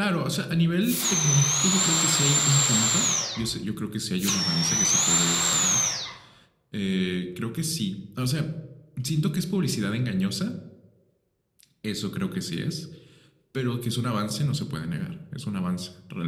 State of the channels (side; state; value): both; identical; correlation 1.00